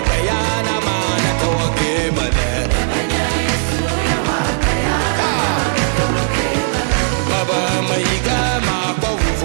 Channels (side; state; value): left; silent; digital silence